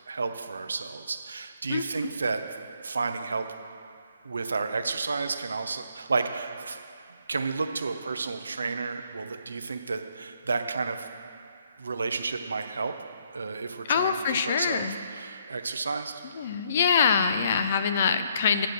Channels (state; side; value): inverted; both; correlation -0.70